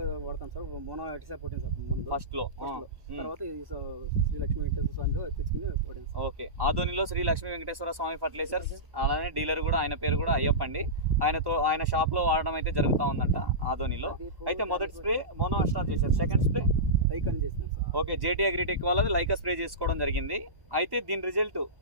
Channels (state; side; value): late; left; 1.1 ms